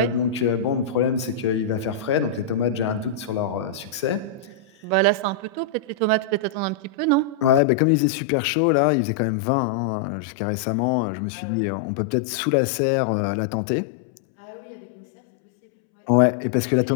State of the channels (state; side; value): drops out; right; at 7.6 s